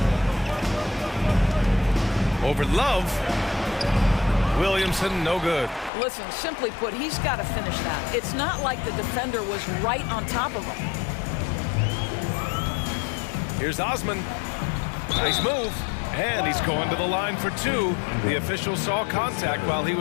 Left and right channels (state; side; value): drops out; right; at 5.9 s